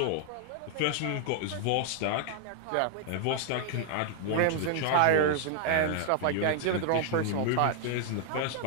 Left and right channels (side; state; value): both; different; correlation 0.00